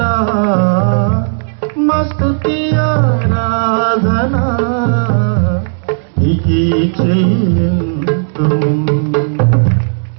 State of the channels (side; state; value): left; silent; digital silence